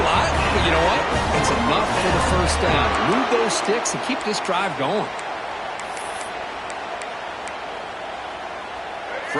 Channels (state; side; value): identical; both; correlation 1.00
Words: lot, but you know what? It's enough for the first down. Move those sticks and keep this drive going.